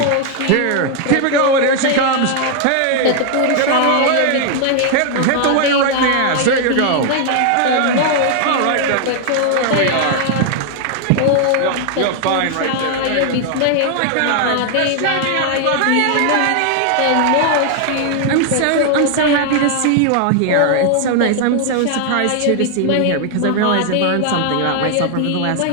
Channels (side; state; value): both; different; correlation 0.00